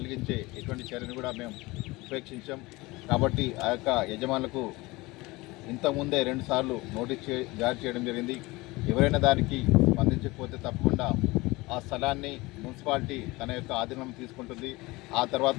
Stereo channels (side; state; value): right; quieter; 21.9 dB